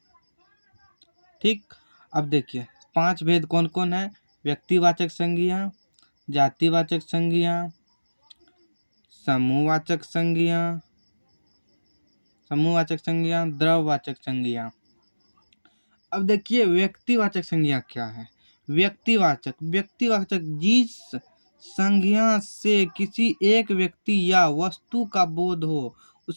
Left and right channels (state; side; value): inverted; both; correlation -1.00